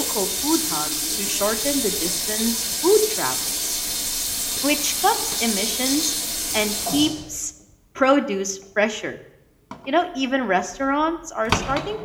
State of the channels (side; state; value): both; identical; correlation 1.00